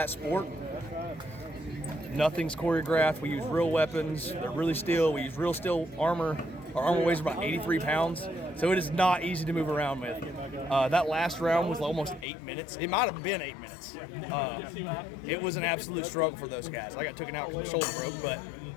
sport. Nothing's choreographed. We use real weapons. They're really steel. We use real steel armor. Our armor weighs about 83 pounds, so it is not easy to move around with. That last round was almost 8 minutes. It might have been 8 minutes. It was an absolute struggle for those guys. I got taken out because my shoulder broke, but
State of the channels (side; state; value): right; drops out; at 12.2 s